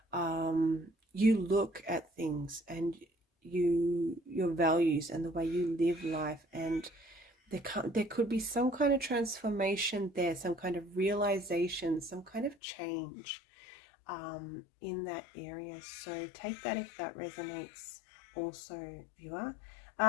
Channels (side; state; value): right; drops out; at 12.6 s